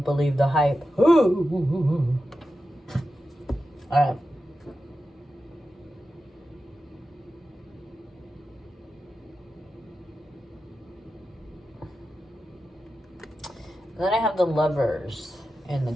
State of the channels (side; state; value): both; normal; correlation 0.91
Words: believe the hype. All right. Then I have the Lovers in the